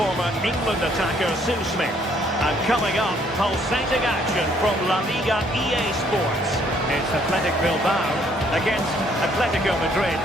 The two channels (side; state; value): both; normal; correlation 0.65